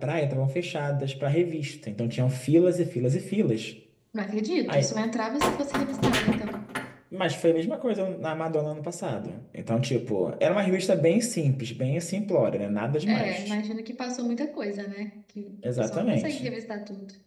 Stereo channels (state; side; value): identical; both; correlation 1.00